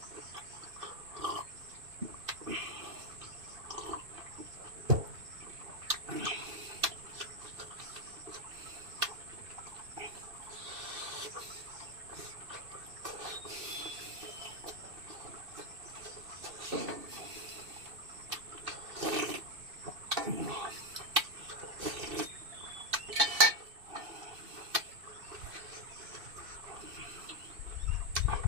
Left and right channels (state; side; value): late; left; 2.7 ms